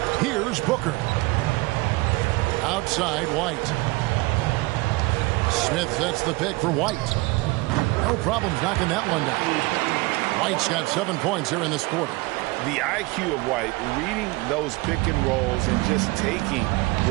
Here's Booker. Outside White. Smith sets the pick for White. No problems knocking that one down. White's got 7 points here in this quarter. The IQ of White, reading those pick and rolls and just taking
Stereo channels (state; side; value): quieter; left; 23.3 dB